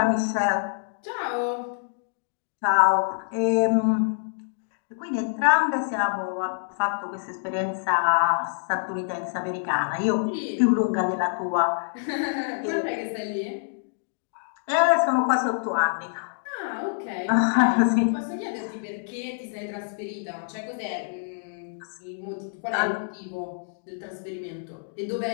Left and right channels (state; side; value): silent; right; digital silence